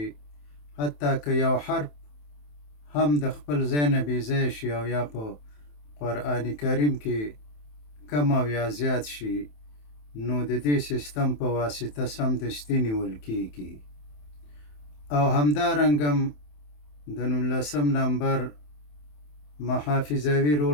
حتی که یو حرف هم د خپل ځای نه بې ځایه شي او یا په قرآن کریم کې کم او یا زیات شي، نو د دې سیستم په واسطه سمدستي نیول کیږي. او همدارنګه د 19 نمبر محافظوي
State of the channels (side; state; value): right; late; 27 ms